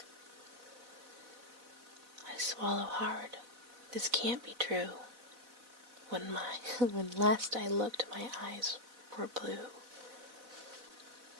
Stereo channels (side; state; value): left; late; 4.0 ms